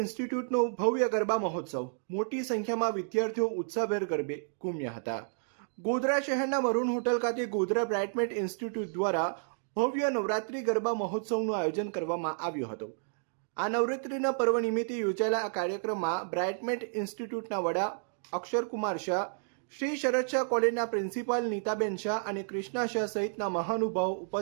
ભવ્ય ગરબા મહોત્સવ. મોટી સંખ્યામાં વિદ્યાર્થીઓ ઉત્સાહભેર ગરબે ઘૂમ્યા હતા. ગોધરા શહેરના મરૂન હોટલ ખાતે ગોધરા બ્રાઇટમેન્ટ ઇન્સ્ટિટ્યૂટ દ્વારા ભવ્ય નવરાત્રિ ગરબા મહોત્સવનું આયોજન કરવામાં આવ્યું હતું. આ નવરાત્રિના પર્વ નિમિત્તે યોજાયેલા આ કાર્યક્રમમાં બ્રાઇટમેન્ટ ઇન્સ્ટિટ્યૂટના વડા અક્ષરકુમાર શાહ, શ્રી શરદ શાહ કોલેજના પ્રિન્સિપાલ નીતાબેન શાહ અને કૃષ્ણા શાહ સહિતના મહાનુભાવો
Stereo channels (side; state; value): left; silent; digital silence